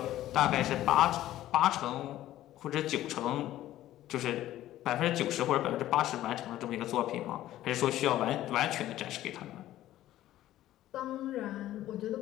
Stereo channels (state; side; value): quieter; right; 14.0 dB